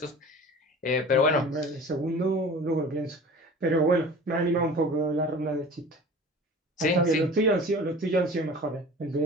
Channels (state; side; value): normal; both; correlation 0.40